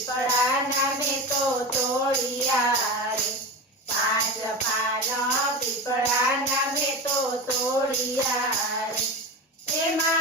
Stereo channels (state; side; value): normal; both; correlation 0.25